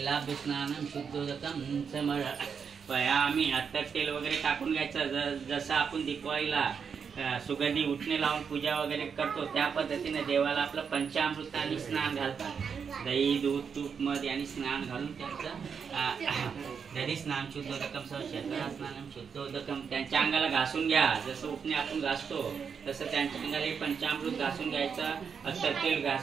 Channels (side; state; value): left; quieter; 6.4 dB